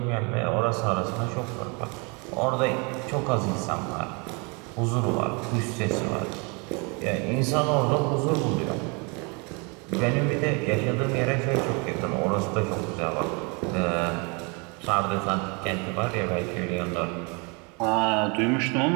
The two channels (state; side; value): quieter; left; 31.8 dB